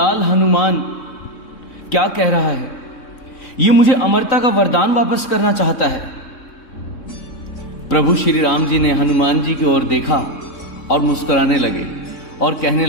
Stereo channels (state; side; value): late; right; 3.6 ms